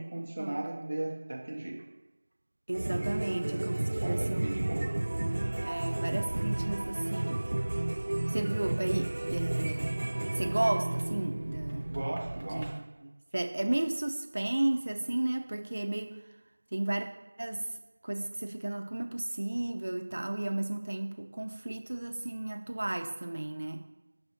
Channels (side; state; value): both; inverted; correlation -1.00